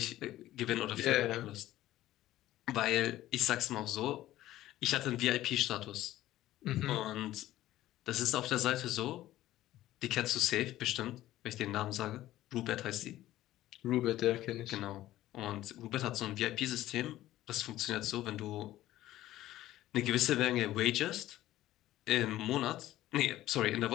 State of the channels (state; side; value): quieter; right; 14.7 dB